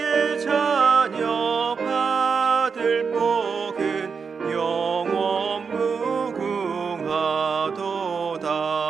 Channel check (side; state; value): left; quieter; 5.6 dB